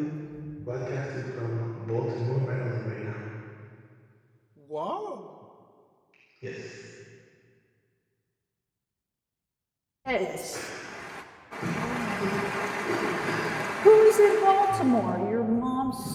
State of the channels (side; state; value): both; identical; correlation 1.00